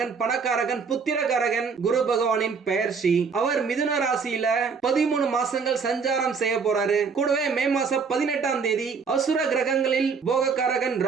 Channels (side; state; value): left; quieter; 5.4 dB